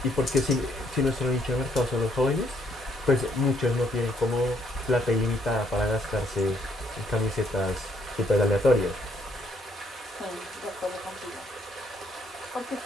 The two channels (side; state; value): both; normal; correlation 0.69